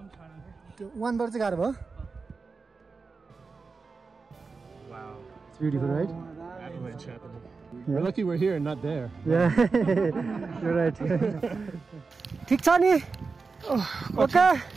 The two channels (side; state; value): left; quieter; 4.5 dB